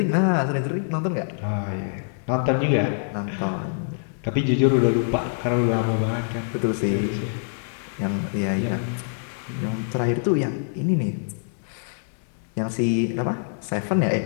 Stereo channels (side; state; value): right; silent; 62 dB below the other